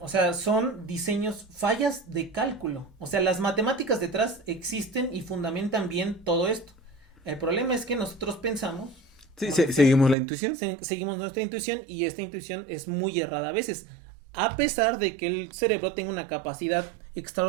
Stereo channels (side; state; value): left; drops out; at 10.2 s